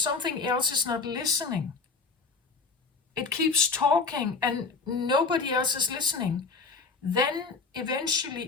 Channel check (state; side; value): quieter; right; 4.4 dB